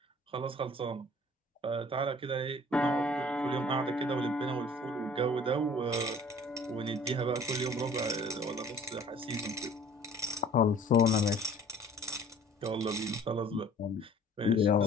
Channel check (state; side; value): normal; both; correlation 0.51